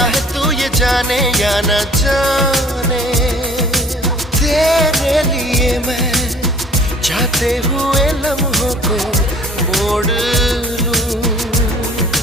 तू ये जाने या ना जाने। तेरे लिए मैं जाते हुए लम्हों को मोड़ लूं,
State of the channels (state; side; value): normal; both; correlation 0.51